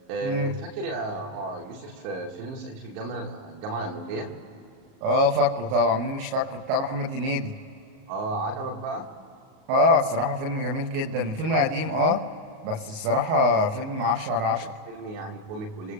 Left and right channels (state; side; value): late; left; 37 ms